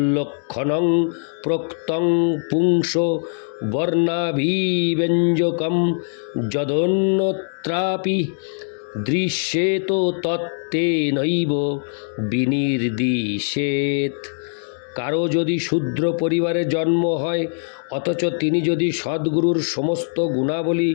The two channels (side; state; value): right; silent; digital silence